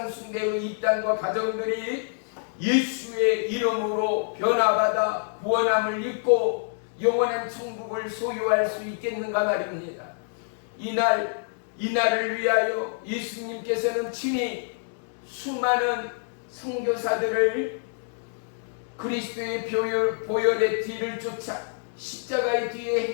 숭배의 입단과 가정들이 예수의 이름으로 변화받아 구원함을 입고 영원한 천국을 소유할 수 있겠는가 말입니다. 이날을 위하여 예수님께서는 친히 수많은 선교사들을 그리스도의 보혈의 뒤를 쫓아 십자가의 뒤에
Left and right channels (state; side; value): silent; right; digital silence